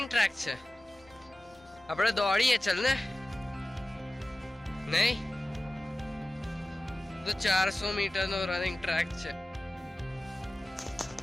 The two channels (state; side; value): normal; both; correlation 0.96